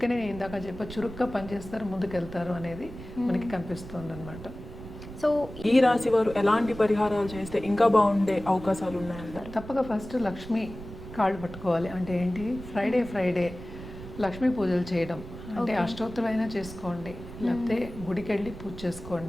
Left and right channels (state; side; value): noise; right; rumble, 13 dB below the sound